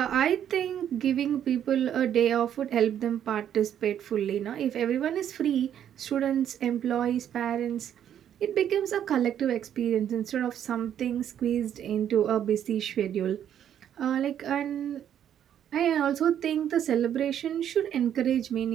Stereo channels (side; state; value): left; quieter; 9.8 dB